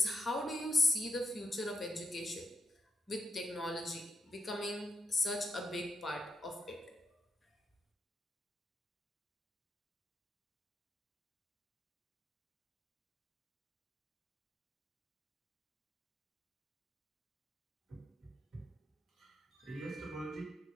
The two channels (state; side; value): normal; both; correlation 0.81